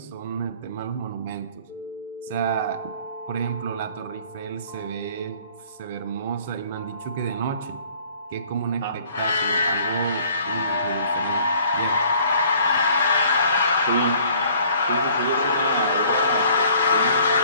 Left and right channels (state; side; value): inverted; both; correlation -0.55